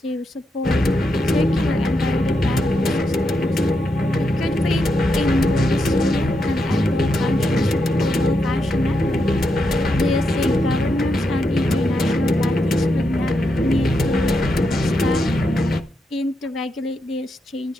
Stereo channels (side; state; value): both; normal; correlation 0.83